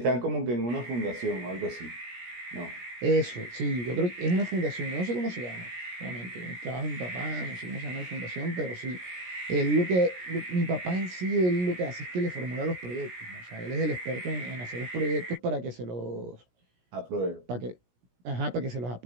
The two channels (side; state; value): left; late; 17 ms